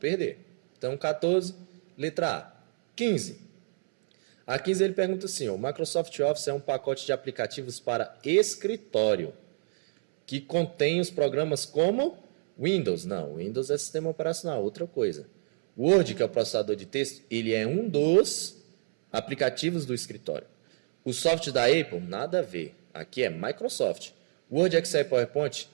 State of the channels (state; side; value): silent; left; 59 dB below the other